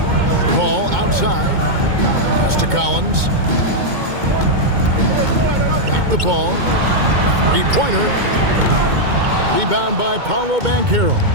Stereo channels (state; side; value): late; left; 2.2 ms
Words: Ball outside. Pass to Collins. Back the ball. 3-pointer. Rebound by Paolo Banchero.